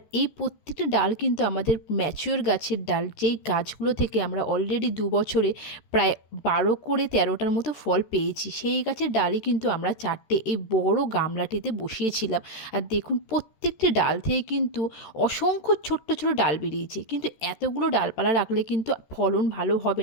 এই প্রত্যেকটা ডাল কিন্তু আমাদের ম্যাচিওর গাছের ডাল, যেই গাছগুলো থেকে আমরা অলরেডি ২ বছরে প্রায় ১২ করে ১৩টার মতো ফল পেয়েছি। সেই গাছের ডালই কিন্তু আমরা ৪টে এই বড় গামলাটিতে বসিয়েছিলাম। আর দেখুন প্রত্যেকটি ডাল থেকে কিন্তু অসংখ্য ছোট্ট, ছোট ডাল বেরিয়েছে। কিন্তু এতগুলো ডালপালা রাখলে কিন্তু ফলন ভালো হবে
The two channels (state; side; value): late; right; 13 ms